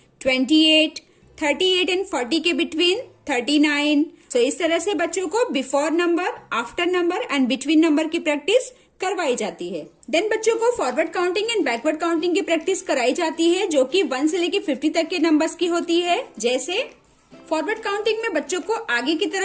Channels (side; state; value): both; identical; correlation 1.00